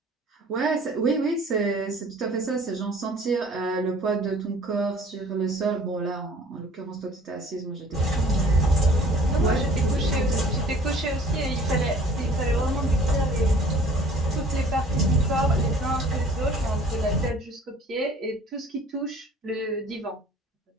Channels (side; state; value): both; normal; correlation 0.51